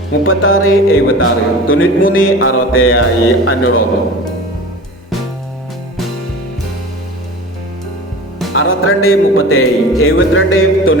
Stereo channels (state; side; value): normal; both; correlation 0.36